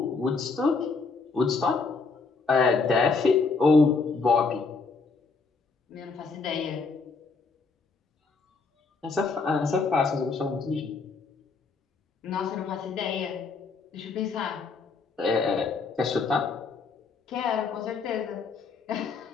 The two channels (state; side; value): quieter; right; 4.4 dB